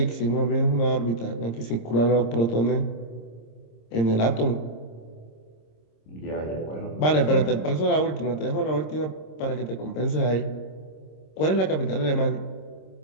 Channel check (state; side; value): late; right; 26 ms